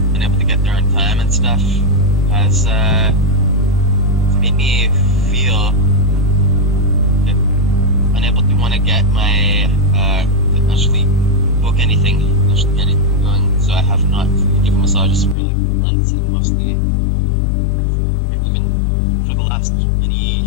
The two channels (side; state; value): right; drops out; at 15.4 s